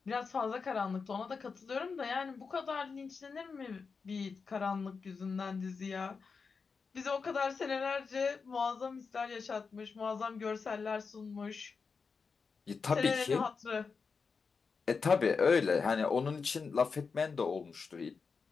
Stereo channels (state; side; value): quieter; right; 5.1 dB